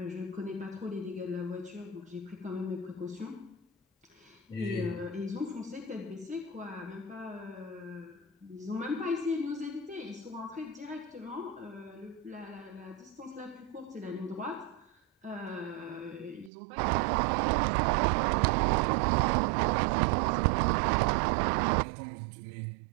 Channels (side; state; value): left; drops out; at 16.5 s